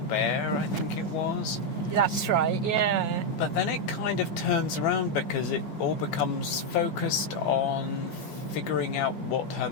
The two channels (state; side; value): late; right; 11 ms